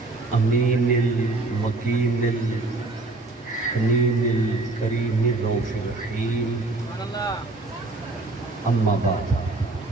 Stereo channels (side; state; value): left; quieter; 3.2 dB